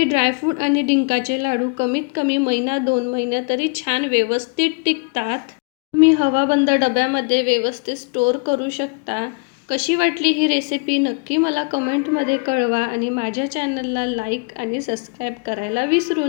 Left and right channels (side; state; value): right; quieter; 32.4 dB